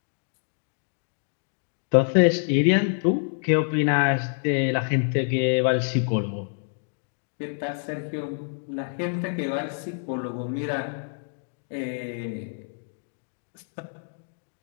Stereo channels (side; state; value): right; silent; digital silence